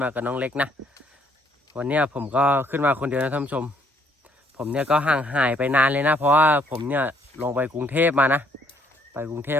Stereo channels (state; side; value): normal; both; correlation 0.66